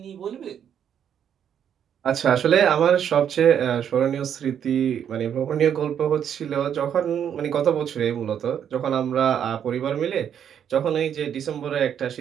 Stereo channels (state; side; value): quieter; left; 8.8 dB